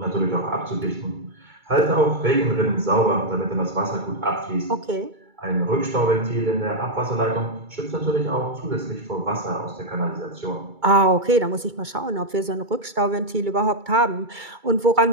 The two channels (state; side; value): late; left; 2.3 ms